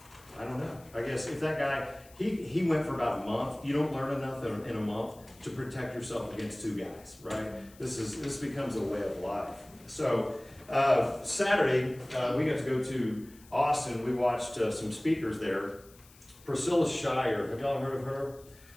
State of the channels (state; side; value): noise; left; hiss, 25 dB below the sound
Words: I don't know, I guess if that guy, he went for about a month. You don't learn enough in a month to protect yourself against 2 guys, right? This becomes a way of life. So, Saturday, we got to go to Austin. We watched some speakers there. Priscilla Shirer, have y'all heard of her?